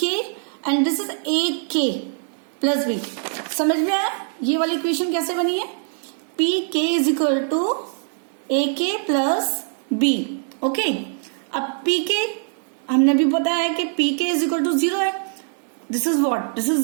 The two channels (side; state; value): left; silent; 64 dB below the other